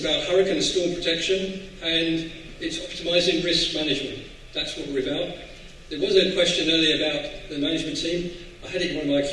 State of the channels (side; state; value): both; identical; correlation 1.00